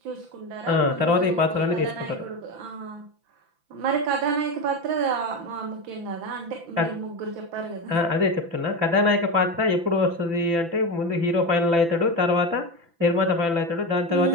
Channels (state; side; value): late; left; 5.9 ms